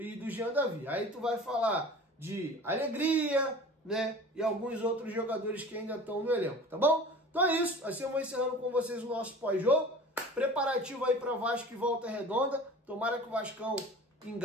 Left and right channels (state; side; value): normal; both; correlation 0.40